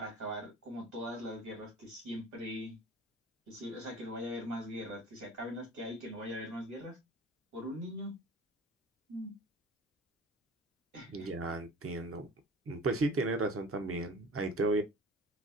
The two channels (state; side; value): normal; both; correlation 0.42